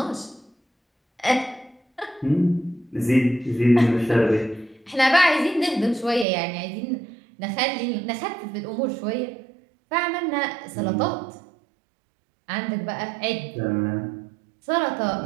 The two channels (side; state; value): left; drops out; at 6.2 s